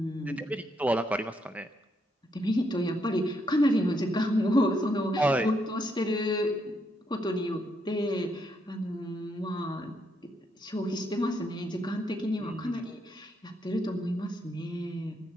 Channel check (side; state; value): both; normal; correlation 0.76